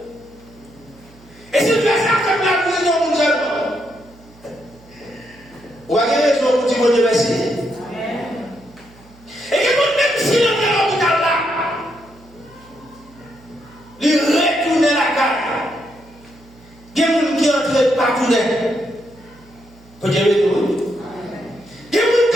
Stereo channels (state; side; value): noise; right; hum, 26 dB below the sound